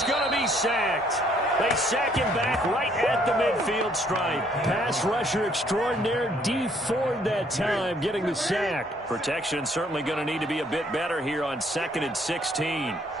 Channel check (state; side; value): normal; both; correlation 0.65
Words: going to be sacked. They sack him back right at the midfield stripe. Pass rusher extraordinaire, Dee Ford that time, getting the sack. Protection certainly going to need to be a bit better here on 2nd and 16.